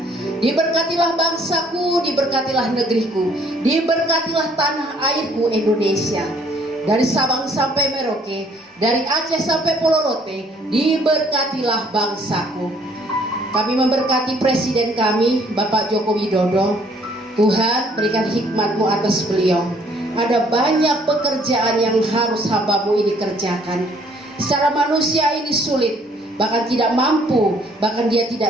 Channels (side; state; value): both; normal; correlation 0.62